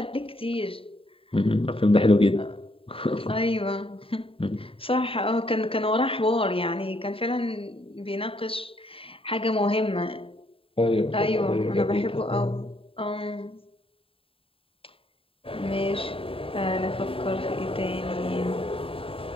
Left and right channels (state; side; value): late; right; 0.27 ms